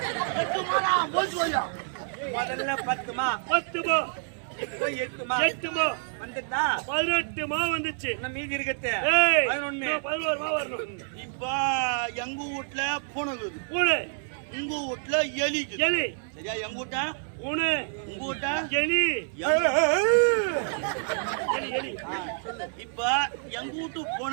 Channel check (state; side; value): silent; left; 59 dB below the other